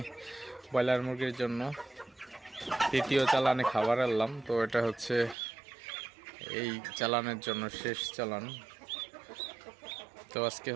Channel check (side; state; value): left; drops out; at 5.4 s